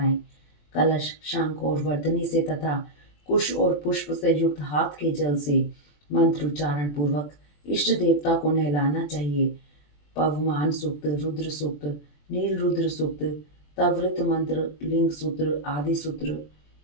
कलश, शंख और वर्धनी से तथा कुश और पुष्प से युक्त हाथ के जल से मंत्रोच्चारण पूर्वक इष्ट देवता को नहलाना चाहिए। पवमान सूक्त, रुद्र सूक्त, नील रुद्र सूक्त, तवृत मंत्र, लिंग सूत्र आदि सूत्र,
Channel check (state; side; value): late; right; 20 ms